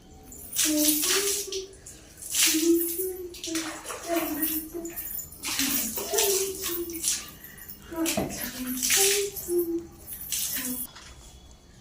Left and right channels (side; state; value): both; identical; correlation 1.00